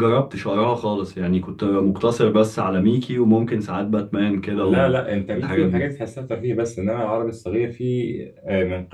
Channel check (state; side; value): identical; both; correlation 1.00